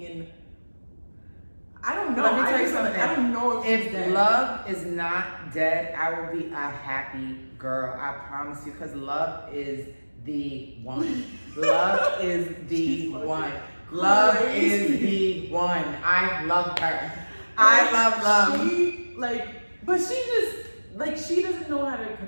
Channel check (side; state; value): both; inverted; correlation -1.00